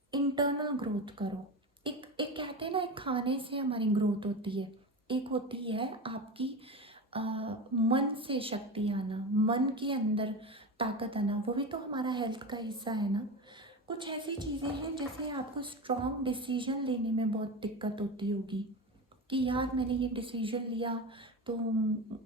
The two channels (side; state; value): both; normal; correlation 0.24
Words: इंटरनल ग्रोथ करो। एक एक कहते हैं ना, एक खाने से हमारी ग्रोथ होती है, एक होती है आपकी मन से शक्ति आना, मन के अंदर ताकत आना, वो भी तो हमारा हेल्थ का हिस्सा है ना। कुछ ऐसी चीज़ें हैं जैसे आपको स्ट्रॉन्ग डिसीजन लेने में बहुत दिक्कत होती होगी कि यार मैंने ये डिसीजन लिया तो